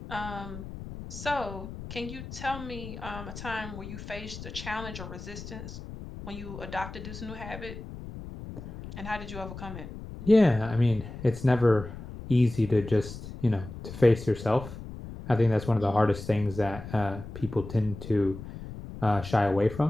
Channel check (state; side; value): noise; left; rumble, 11 dB below the sound